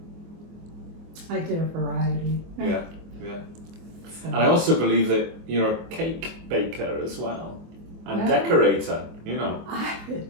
I did a variety. Yeah. So. And I also believe that you're a cake baker as well, and decorator,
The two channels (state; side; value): late; left; 24 ms